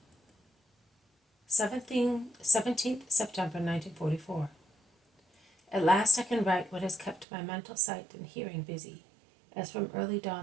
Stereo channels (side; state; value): left; drops out; at 7.2 s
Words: 17th September 1944. At last I can write what has kept my mental sight and hearing busy, as from early